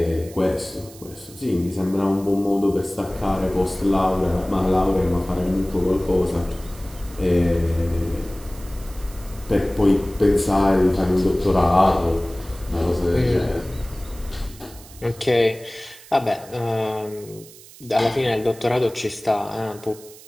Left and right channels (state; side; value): noise; right; hiss, 20 dB below the sound